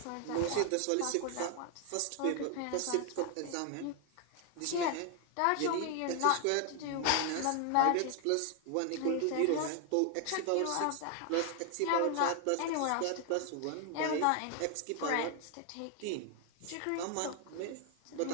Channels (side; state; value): both; different; correlation 0.00